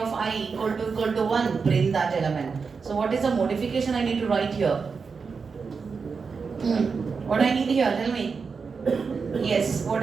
I equal to 1, print that element. So what is the modification I need to write here? What I need here, tell me. Yes,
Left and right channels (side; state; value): left; quieter; 5.2 dB